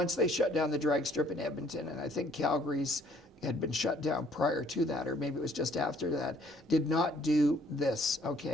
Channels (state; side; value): normal; both; correlation 0.61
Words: they shut down the drag strip in Edmonton, and I think Calgary's had been shut down prior to that, or maybe it was just after that, did not do this,